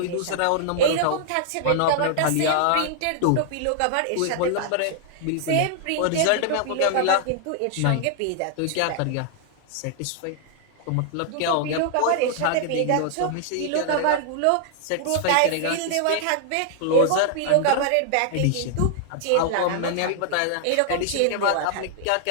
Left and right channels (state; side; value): different; both; correlation 0.00